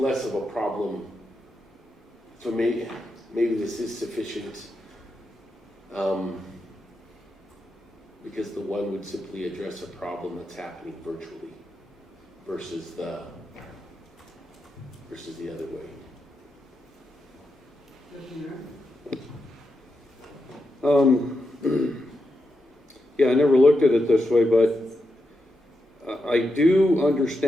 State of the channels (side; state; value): both; normal; correlation 0.86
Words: of a problem. So maybe this is sufficient, because the one would simply address a problem that's happening virtually versus the other way. Yeah, I never looked at it this way, but I do